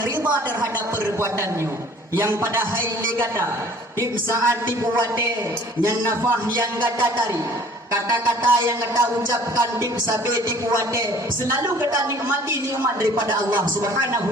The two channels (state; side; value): normal; both; correlation 0.52